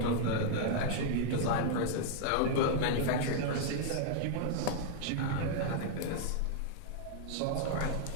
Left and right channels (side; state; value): both; different; correlation 0.00